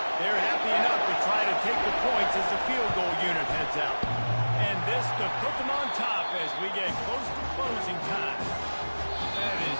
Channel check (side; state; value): both; inverted; correlation -1.00